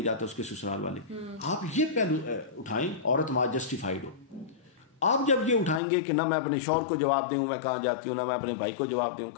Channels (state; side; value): drops out; right; at 5.8 s